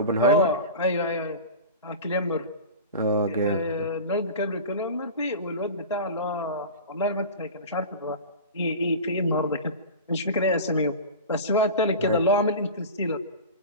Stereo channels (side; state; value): both; inverted; correlation -0.31